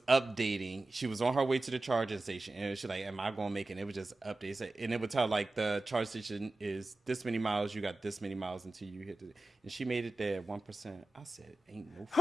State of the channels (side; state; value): both; normal; correlation 0.96